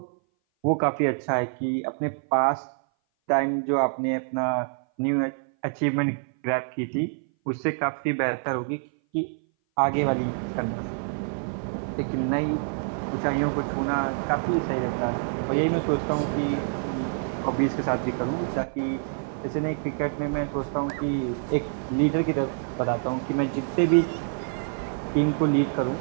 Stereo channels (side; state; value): left; silent; 58 dB below the other